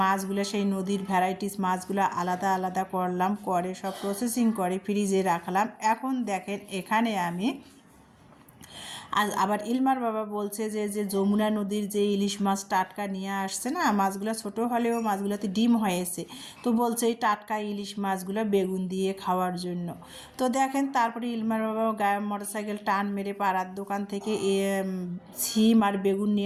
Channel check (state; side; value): identical; both; correlation 1.00